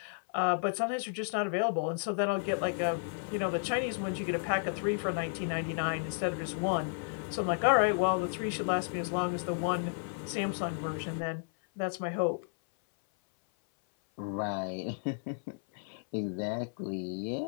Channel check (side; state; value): right; silent; 56 dB below the other